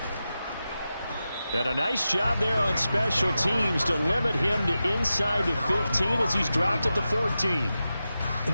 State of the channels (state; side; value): inverted; both; correlation -0.92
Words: And a nice job there on special teams to limit him to inside the 15 as he's dropped at the 14. In